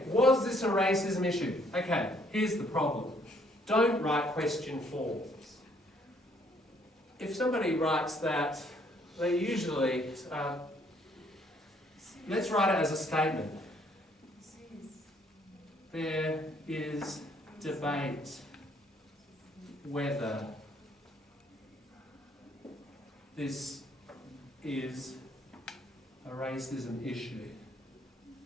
was this a racism issue? Okay, here's the problem. Don't write question forms. If somebody writes that, they usually, let's write it as a statement. There is debate whether this is a racism issue.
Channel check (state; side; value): normal; both; correlation 0.65